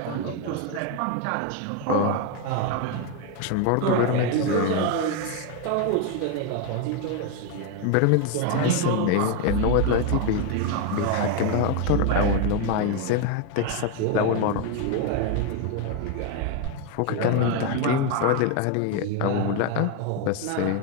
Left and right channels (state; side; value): different; both; correlation 0.02